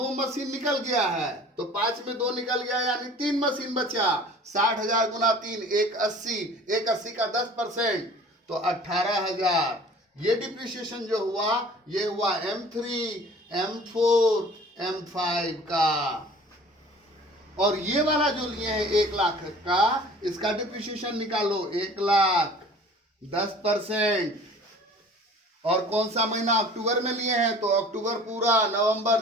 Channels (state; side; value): normal; both; correlation 0.46